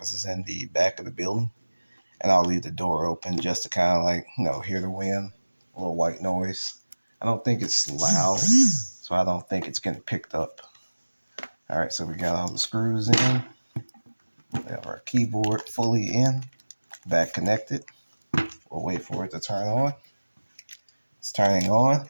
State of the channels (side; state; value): both; inverted; correlation -1.00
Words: is in the back of the building, and I'll leave the door open just to kind of like hear the wind, a little white noise. I don't think it's loud, so I don't think it's getting picked up. All right, so we got all the screws in. We have our keyboard fully in, back connected. We'll wait for it to turn on. It's turning on,